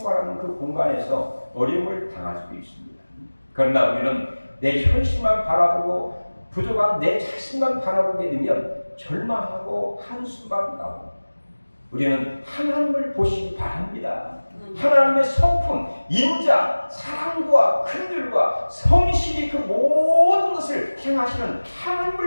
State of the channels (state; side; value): inverted; both; correlation -1.00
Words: 그 공간에서 어려움을 당할 수도 있습니다. 그러나 우리는 내 현실만 바라보고 부족한 내 자신만 바라보게 되면 절망하고 한숨만 나옵니다. 우리는 하나님을 보시기 바랍니다. 하나님의 성품, 인자, 사랑과 긍휼과 성실이 그 모든 것을 행하시는